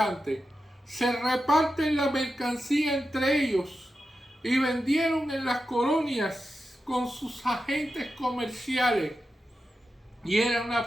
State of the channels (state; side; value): normal; both; correlation 0.90